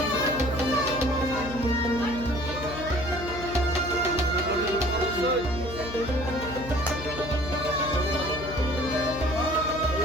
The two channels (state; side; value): noise; left; hum, 11 dB below the sound